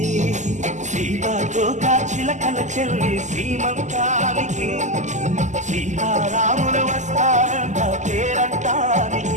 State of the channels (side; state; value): left; late; 0.34 ms